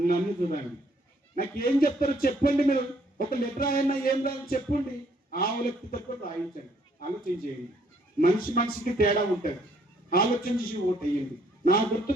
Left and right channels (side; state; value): both; normal; correlation 0.66